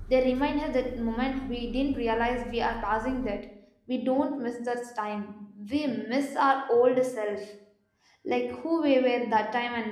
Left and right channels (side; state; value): both; identical; correlation 1.00